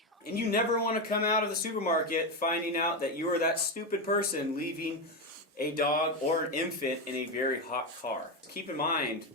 And you never want to come out of the supermarket finding out that you are that stupid person leaving a dog or an infant in a very hot car. Keep in mind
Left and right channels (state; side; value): normal; both; correlation 0.11